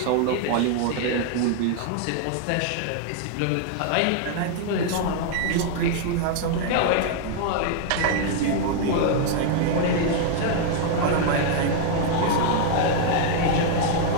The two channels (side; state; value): both; different; correlation 0.00